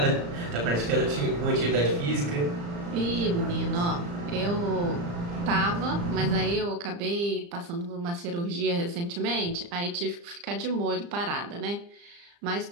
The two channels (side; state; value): left; late; 35 ms